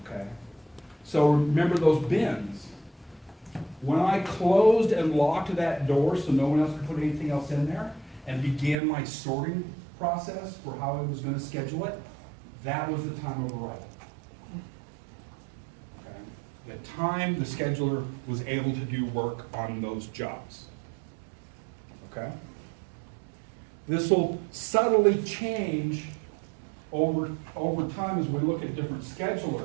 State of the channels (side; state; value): left; drops out; at 8.8 s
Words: Okay? So remember those bins. When I closed and locked that door so no one else could put anything else in there and began my sorting process for how I was going to schedule it, that was the time of arrival. Okay? The time the scheduler was able to do work on those jobs. Okay? This will subtly change over time as we look at different